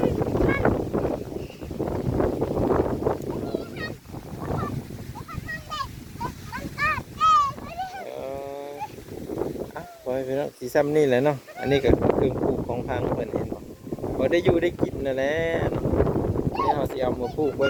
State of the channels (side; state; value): both; identical; correlation 1.00